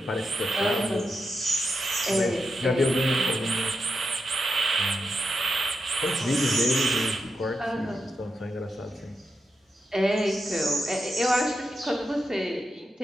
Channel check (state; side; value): normal; both; correlation 0.86